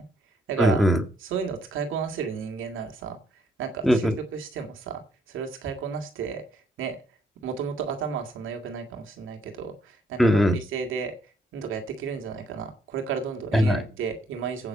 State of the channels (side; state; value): both; normal; correlation 0.70